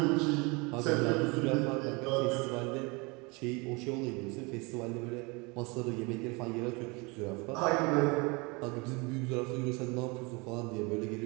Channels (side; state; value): left; quieter; 27.9 dB